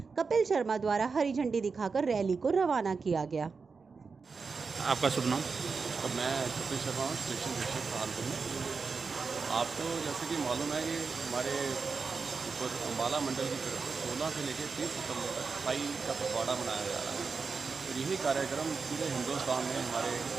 कपिल शर्मा द्वारा हरी झंडी दिखाकर रैली को रवाना किया गया। आपका शुभ नाम? और मैं कपिल शर्मा हूँ, स्टेशन अधीक्षक सहारनपुर में। आपको जैसे कि मालूम है कि हमारे ऊपर अंबाला मंडल की तरफ 16 से लेकर 30 सितंबर तक सफाई का पखवाड़ा मनाया जा रहा है। और यही कार्यक्रम पूरे हिंदुस्तान में हमारे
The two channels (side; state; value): left; quieter; 4.9 dB